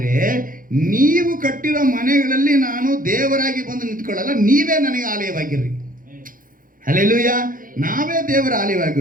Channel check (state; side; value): late; left; 0.40 ms